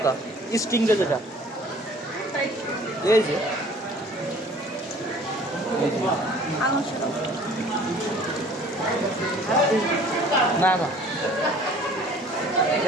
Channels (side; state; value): both; normal; correlation 0.51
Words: স্টিং রে যেটা, এই যে না না,